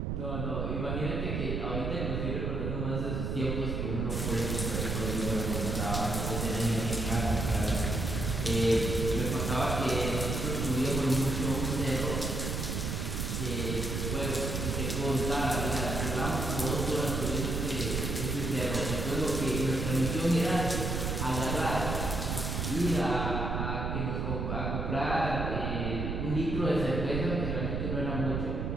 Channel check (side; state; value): right; noise; rumble, 1 dB below the sound